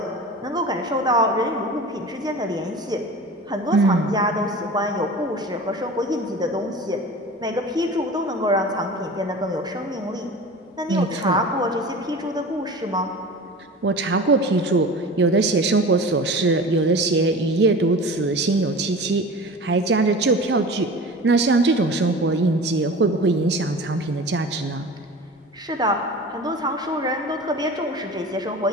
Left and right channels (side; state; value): both; normal; correlation 0.36